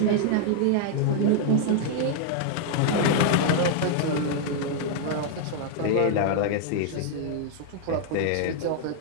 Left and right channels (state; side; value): different; both; correlation 0.00